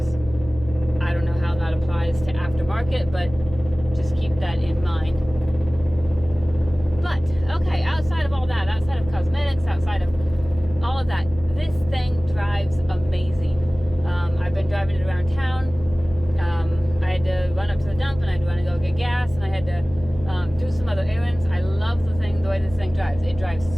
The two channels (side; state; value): left; noise; hum, 14 dB below the sound